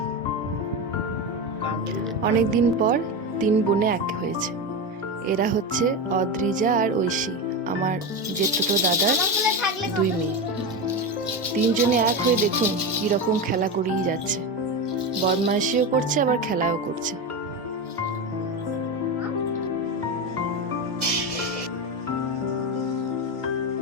অনেকদিন পর 3 বোনে এক হয়েছে। এরা হচ্ছে অদ্রিজা আর ঐশী, আমার জেঠতো দাদার 2 মেয়ে। 3 জনে এক হয়ে দেখুন কি রকম খেলা করেই যাচ্ছে। বদমাইশিও করছে আবার খেলাও করছে।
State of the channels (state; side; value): normal; both; correlation 0.17